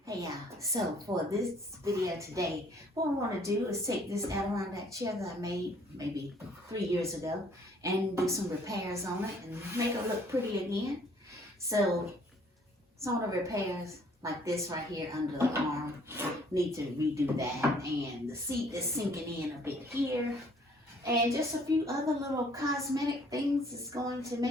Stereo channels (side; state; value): both; normal; correlation 0.60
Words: Hey y'all, so for this video today, what I want to do is take this Adirondack chair that I made maybe 3 years ago and do some repairs on it and make it look pretty again. So some of the repairs like this right here under the arm, need to redo that, and the seat is sinking in a bit here, and just a few other little cosmetic things is going to